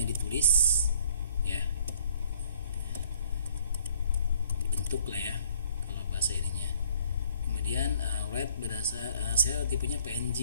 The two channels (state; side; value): inverted; both; correlation -0.60